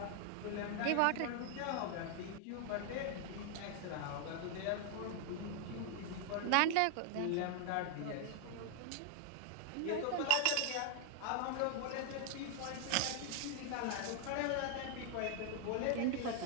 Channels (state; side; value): different; both; correlation 0.00